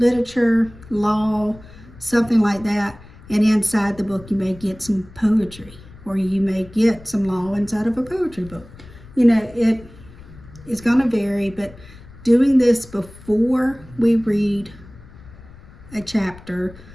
law, something like that, and inside the book you may get some poetry, or you may get some law inside of a poetry book. You know, it is going to vary, but doing this before we read a chapter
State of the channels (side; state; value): left; noise; rumble, 20 dB below the sound